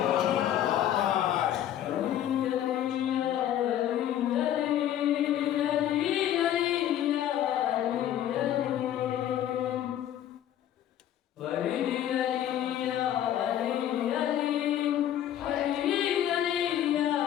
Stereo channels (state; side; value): quieter; right; 11.3 dB